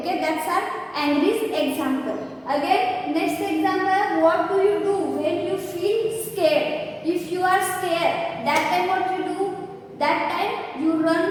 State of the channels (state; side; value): identical; both; correlation 1.00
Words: that's our angry example. Again next example, what do you do when you feel scared? If you are scared, that time what you do? That time you